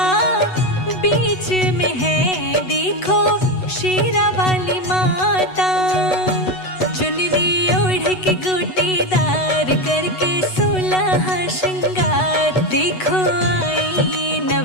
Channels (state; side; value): late; right; 8.1 ms